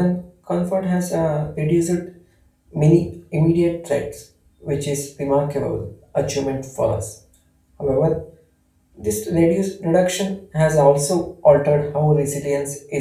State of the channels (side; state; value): both; identical; correlation 1.00